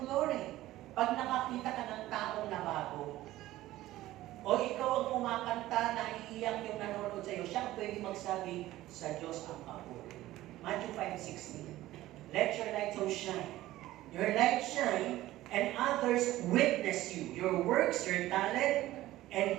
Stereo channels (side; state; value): left; quieter; 15.8 dB